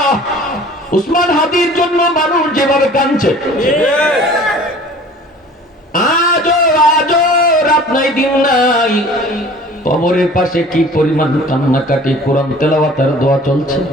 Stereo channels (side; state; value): both; normal; correlation 0.47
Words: উসমান হাদির জন্য মানুষ যেভাবে কাঁদছে, আজও আজও রাত নাই দিন নাই, কবরের পাশে কি পরিমাণ কান্নাকাটি, কোরআন তেলাওয়াত আর দোয়া চলছে।